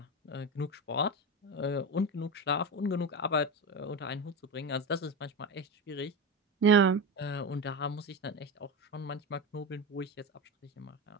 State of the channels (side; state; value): both; normal; correlation 0.20